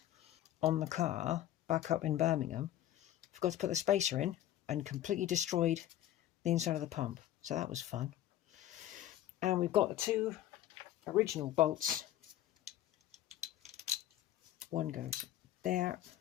on the car back up in Birmingham, I forgot to put the spacer in and completely destroyed the inside of the pump. So that was fun. And we've got the 2 original bolts. One goes there.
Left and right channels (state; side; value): quieter; right; 12.8 dB